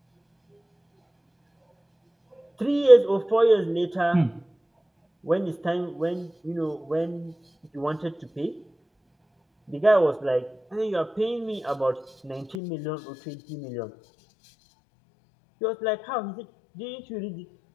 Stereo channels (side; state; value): right; drops out; at 12.6 s